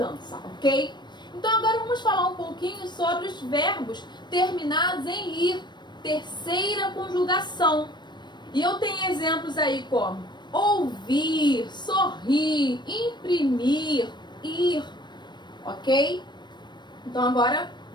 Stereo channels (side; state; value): right; late; 0.22 ms